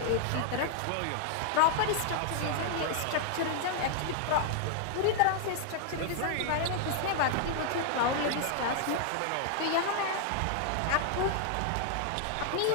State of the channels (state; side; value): different; both; correlation 0.00